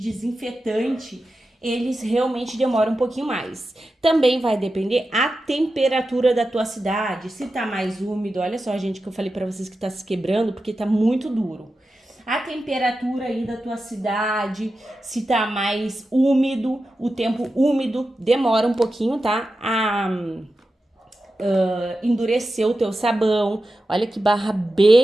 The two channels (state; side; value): normal; both; correlation 0.92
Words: eles realmente demoram um pouquinho mais. Também vai depender a temperatura da tua cidade, se tá mais úmido, olha só, gente, que eu falei pra vocês que tá se quebrando, porque tá muito duro. A temperatura aí da tua cidade, se tá mais úmido, o tempo úmido demora um pouquinho, tá? A endurecer o teu sabão. Olha que barra